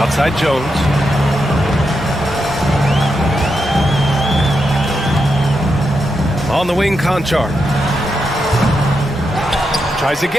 Jones. On the wing, Conchar. Tries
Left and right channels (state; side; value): normal; both; correlation 0.85